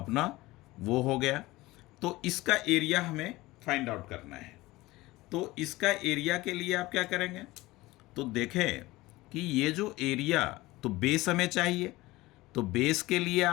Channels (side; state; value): right; quieter; 19.4 dB